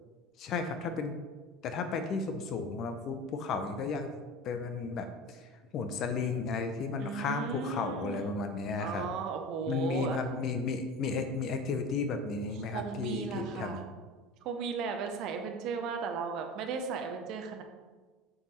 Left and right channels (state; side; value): normal; both; correlation 0.33